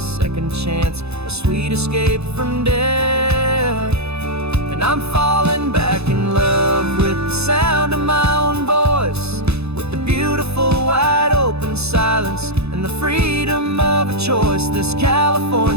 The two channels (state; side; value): late; left; 0.79 ms